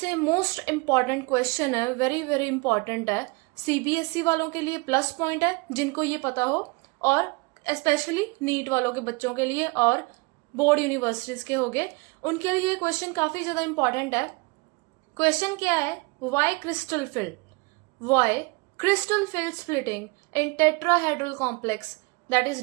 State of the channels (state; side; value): quieter; left; 27.8 dB